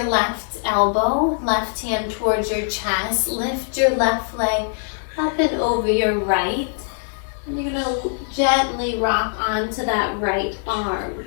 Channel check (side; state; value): right; silent; digital silence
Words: left elbow, left hand towards your chest. Lift your left leg up and over your right, and you're going to gently rock onto that right arm.